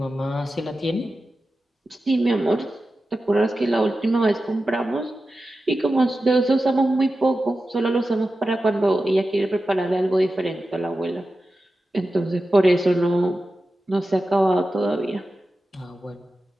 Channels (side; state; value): both; normal; correlation 0.93